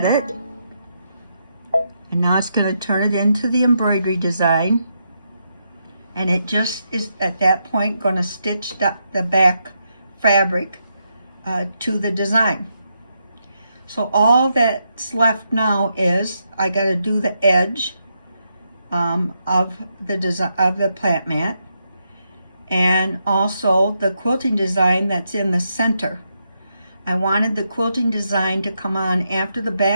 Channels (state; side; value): inverted; both; correlation -0.81